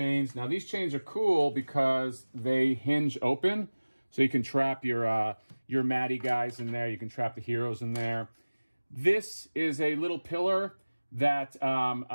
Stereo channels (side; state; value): both; inverted; correlation -1.00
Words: Now these chains are cool because they hinge open. So you can trap your Maddie guys in there. You can trap the heroes in there. This is a little pillar that